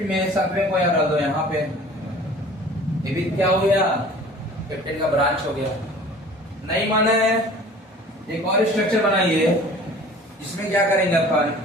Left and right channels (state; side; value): normal; both; correlation 0.46